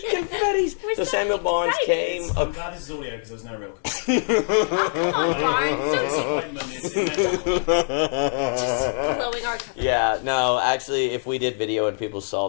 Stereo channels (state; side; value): silent; right; 63 dB below the other